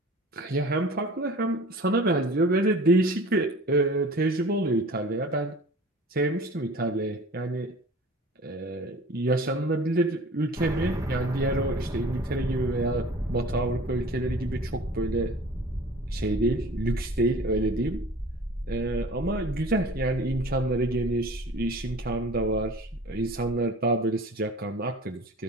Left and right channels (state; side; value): normal; both; correlation 0.43